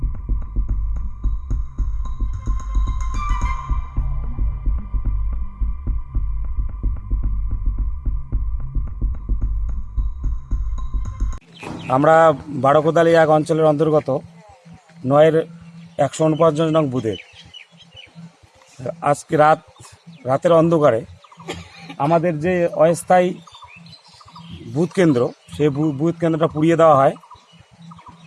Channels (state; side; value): identical; both; correlation 1.00